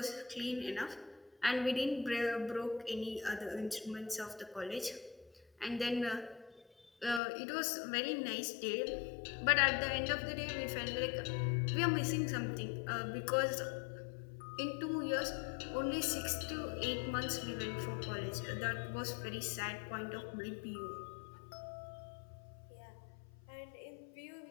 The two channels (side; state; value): right; drops out; at 7.2 s